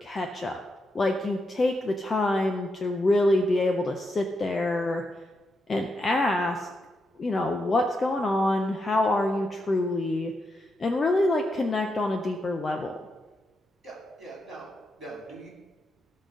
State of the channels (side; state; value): both; normal; correlation 0.84